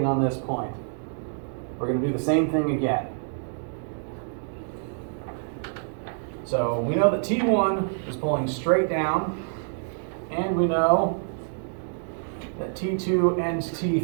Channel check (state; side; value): silent; left; digital silence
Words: on this point. We're going to do the same thing again. So we know that T1 is pulling straight down, and we know that T2 and